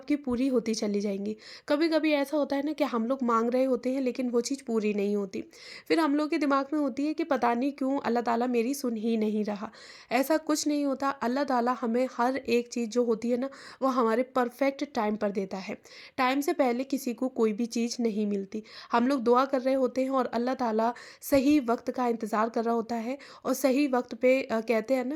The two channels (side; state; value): both; identical; correlation 1.00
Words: पूरी होती चली जाएंगी। कभी कभी ऐसा होता है ना कि हम लोग मांग रहे होते हैं लेकिन वो चीज़ पूरी नहीं होती। फिर हम लोग के दिमाग में होती है कि पता नहीं क्यों अल्लाह ताला मेरी सुन ही नहीं रहा। ऐसा कुछ नहीं होता। अल्लाह ताला हमें हर एक चीज़ जो होती है ना, वो हमारे परफेक्ट टाइम पर देता है। टाइम से पहले किसी को कोई भी चीज़ नहीं मिलती। हम लोग दुआ कर रहे होते हैं और अल्लाह ताला सही वक्त का इंतज़ार कर रहा होता है और सही वक्त पे कहते हैं